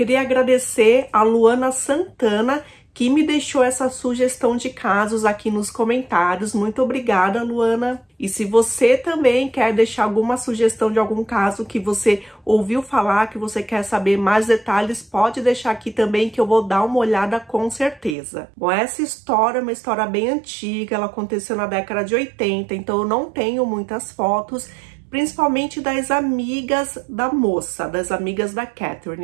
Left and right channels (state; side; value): drops out; left; at 18.2 s